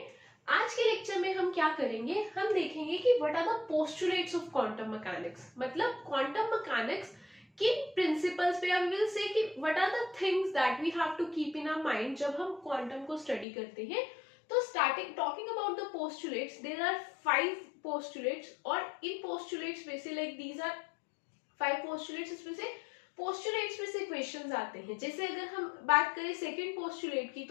आज के लेक्चर में हम क्या करेंगे, हम देखेंगे कि what are the postulates of quantum mechanics, मतलब क्वांटम मैकेनिक्स किन प्रिंसिपल्स पे, वी विल से कि what are the things that we have to keep in our mind जब हम क्वांटम को स्टडी करते हैं। तो starting talking about the postulates, there are 5 postulates और इन पोस्टुलेट्स में से दीज आर 5 पोस्टुलेट्स, इसमें से पोस्टुलेट्स में से क्वेश्चंस आते हैं। जैसे अगर हम बात करें सेकंड पोस्टुलेट की,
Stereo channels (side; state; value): right; drops out; at 13.5 s